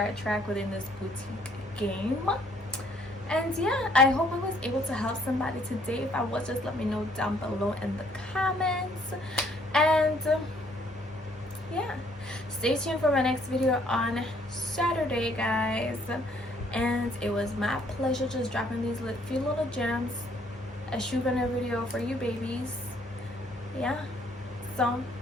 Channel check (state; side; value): normal; both; correlation 0.64